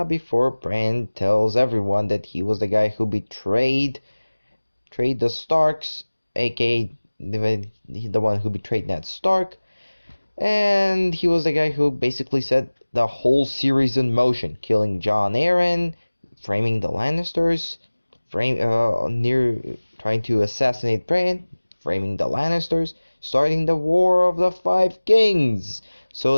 before Bran tells everyone that he was the guy who betrayed the Starks, aka the one who betrayed Ned Stark, and he was the guy who basically set the whole series in motion, killing Jon Arryn, framing the Lannisters, trying to assassinate Bran, framing the Lannisters, starting the War of the Five Kings,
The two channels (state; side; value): inverted; both; correlation -1.00